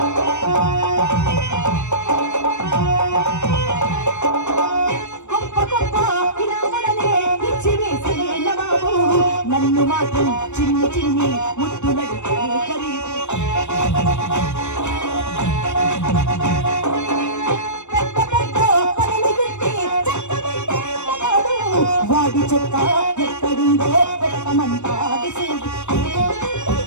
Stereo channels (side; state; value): right; late; 0.83 ms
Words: నన్ను మాత్రం చిన్ని చిన్ని ముద్దులడితే ఖరీదు. పెద్ద పెద్ద పనులు పెట్టి చక్కబెట్టే మగాడు. వాడి చెక్క ఎక్కడుందో పెట్టమంటాడు చూడు.